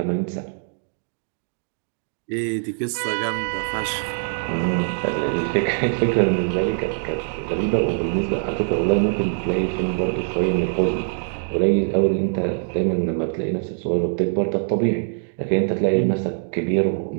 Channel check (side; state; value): left; silent; digital silence